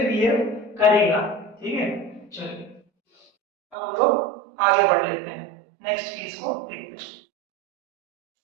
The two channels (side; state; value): left; drops out; at 3.8 s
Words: बिहेव करेगा। ठीक है, चलिए अब हम लोग आगे बढ़ लेते हैं, नेक्स्ट केस को देखते हैं।